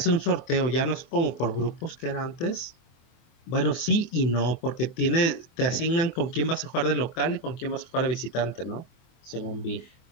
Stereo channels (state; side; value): late; right; 24 ms